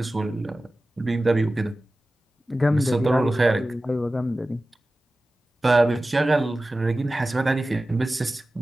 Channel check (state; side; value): normal; both; correlation 0.96